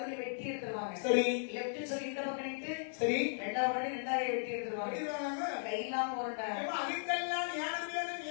வெட்டி எடுத்துருவாங்க. சரி. லெஃப்ட்னு சொல்லி இந்த பக்கம் நின்று சரி. 2வது முன்னாடி 2வது வெட்டி எடுத்துருவாங்க. அடிவாங்க. கையில்லாம உருண்டை. அதுக்கெல்லாம் ஞானம் வேணும்,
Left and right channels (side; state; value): right; silent; digital silence